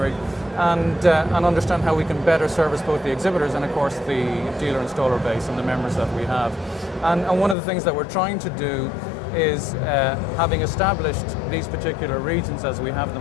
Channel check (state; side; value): drops out; right; at 7.6 s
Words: and understand how we can better service both the exhibitors and of course the dealer installer base and the members that we have. And one of the things that we're trying to do is, having established these particular regions as we have